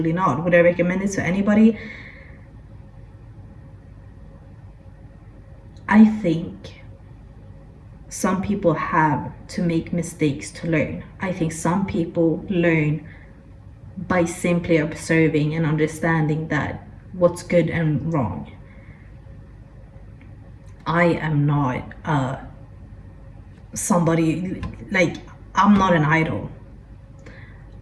not. Would I recommend it to anybody? I think some people have to make mistakes to learn. I think some people learn by simply observing and understanding that what's good and wrong. I am not somebody, like, I'm not an idol.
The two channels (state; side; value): identical; both; correlation 1.00